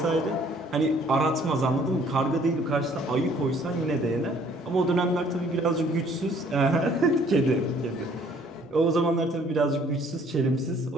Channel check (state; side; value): normal; both; correlation 0.59